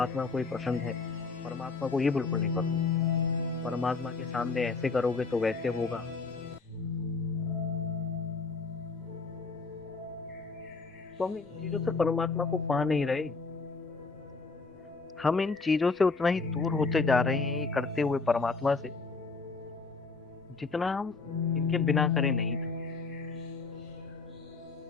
को ये पसंद है, परमात्मा को ये बिल्कुल नहीं पसंद, परमात्मा के सामने ऐसे करोगे तो वैसे होगा। तो हम इन चीजों से परमात्मा को पा नहीं रहे, हम इन चीजों से उतना ही दूर होते जा रहे हैं ये करते हुए परमात्मा से, जितना हम इनके बिना करे नहीं थे।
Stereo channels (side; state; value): right; quieter; 4.1 dB